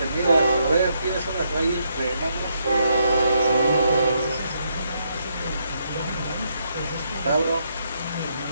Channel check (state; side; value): inverted; both; correlation -0.77